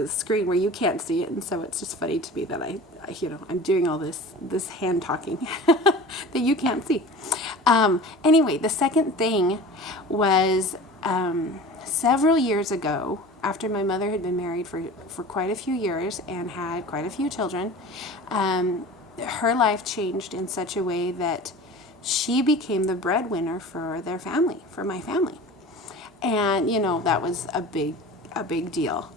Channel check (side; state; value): both; normal; correlation 0.38